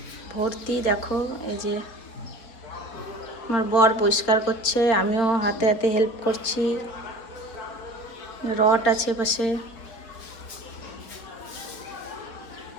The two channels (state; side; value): late; right; 4.4 ms